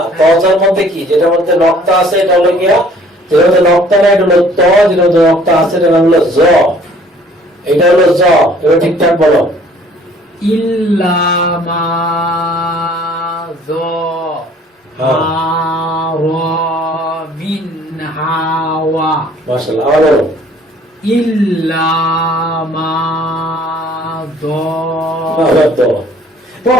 ত জের মধ্যে কি যেটার মধ্যে নক্তা আছে এটা হলো গিয়া যেটার মধ্যে নক্তা নাই এটা হলো ত যেটার মধ্যে নক্তা আছে এটা হলো জ এটা হলো জ এবার ঠিকঠাক বলো ইল্লা মা দো হাওয়া বিন হাওয়া মাশাআল্লাহ আবার বলো ইল্লা মা দো আবার তো তো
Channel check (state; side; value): normal; both; correlation 0.56